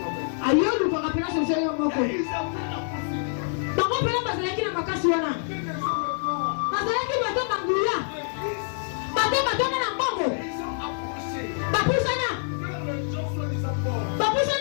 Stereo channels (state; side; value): silent; right; digital silence